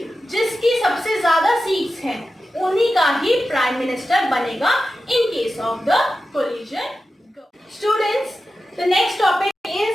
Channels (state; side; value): normal; both; correlation 0.92